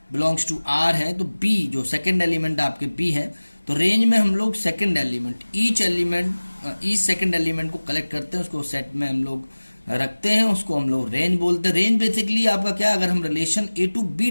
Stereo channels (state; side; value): inverted; both; correlation -1.00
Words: belongs to R है, तो b जो सेकेंड एलिमेंट आपके b है, तो रेंज में हम लोग second element each second element को कलेक्ट करते हैं, उसको सेट में हम लोग रखते हैं, उसको हम लोग रेंज बोलते हैं। रेंज बेसिकली आपका क्या, अगर हम relation A to B